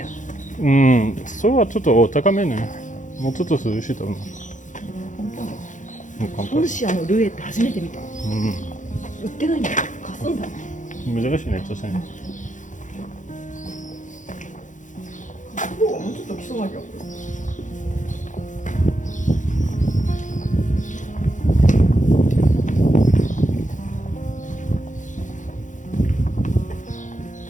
うん、それはちょっと高めね。もうちょっと涼しいと思う。ポルシアのルエって初めて見た。う売ってないんだよ。貸すんだ。ん。珍しいね、確かに。貸す方がもうちょっと来そうな気がする。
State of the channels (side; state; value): right; late; 0.36 ms